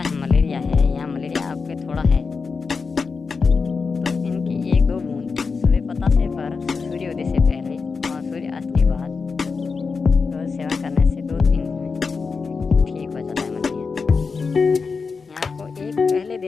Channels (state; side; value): quieter; right; 4.9 dB